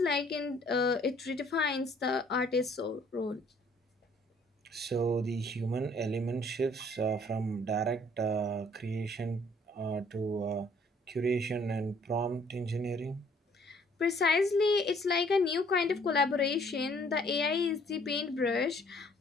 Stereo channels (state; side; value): normal; both; correlation 0.60